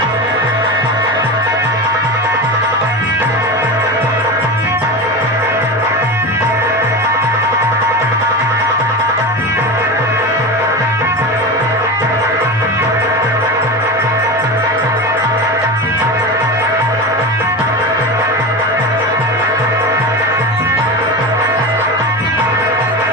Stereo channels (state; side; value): normal; both; correlation 0.24